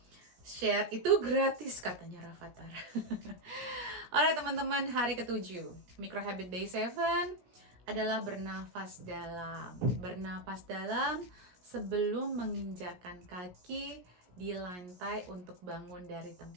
Share itu gratis katanya Rafathar. Alright teman-teman, hari ke-7 Micro Habit Day 7 adalah bernafas dalam. Bernafas dalam sebelum menginjakan kaki di lantai untuk bangun dari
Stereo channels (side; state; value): left; late; 17 ms